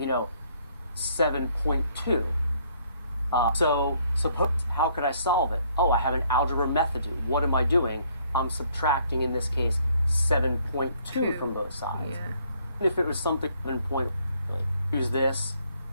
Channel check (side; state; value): both; inverted; correlation -0.65